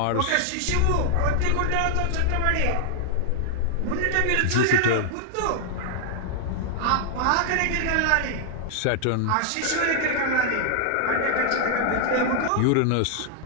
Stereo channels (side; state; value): both; different; correlation 0.00